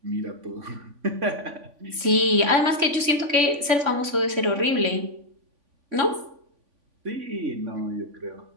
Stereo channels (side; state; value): left; late; 3.5 ms